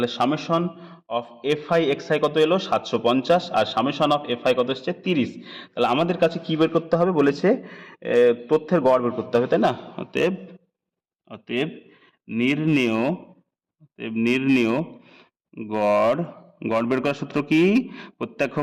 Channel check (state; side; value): identical; both; correlation 1.00